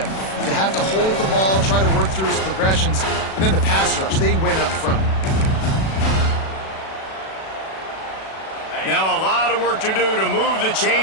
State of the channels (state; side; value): late; right; 37 ms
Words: have to hold the ball, try to work through his progressions, and then the pass rush, they win up front. Now a lot of work to do to move the